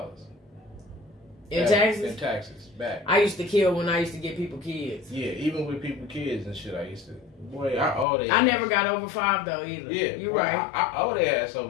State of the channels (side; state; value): right; drops out; at 8.1 s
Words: In taxes? In taxes back. I used to kill when I used to get people kids. Yeah, even with people kids and shit, I used to. Boy, I owe their I ass. never got over 5 though either. Yeah, you boy, right. I owe their ass